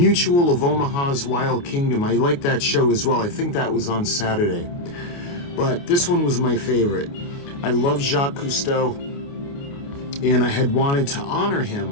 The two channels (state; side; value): late; right; 29 ms